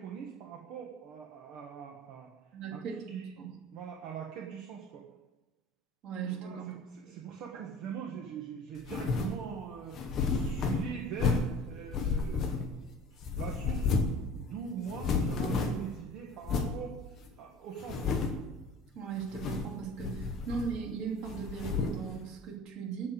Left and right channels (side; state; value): both; normal; correlation 0.41